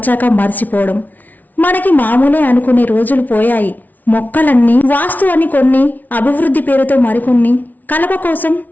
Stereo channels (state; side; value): late; right; 0.079 ms